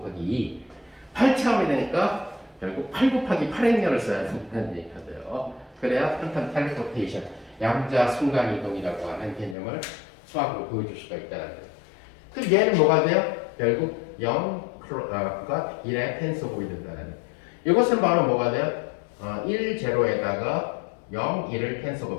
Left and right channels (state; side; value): drops out; right; at 9.6 s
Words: 2. 8차원이 되니까 결국 8 곱하기 8행렬을 써야 된다는 얘기가 돼요. 그래야 퀀텀 텔레포테이션, 양자 순간이동이라고 하는 개념을 수학으로 보여줄 수가 있다는 거예요. 그럼 얘는 뭐가 돼요? 결국 0가 1의 텐서곱이 된다는 거예요. 이것은 바로 뭐가 돼요? 1, 0에다가 0, 1을